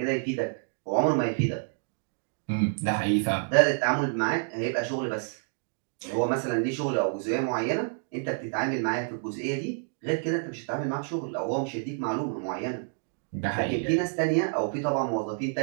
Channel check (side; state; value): left; silent; 59 dB below the other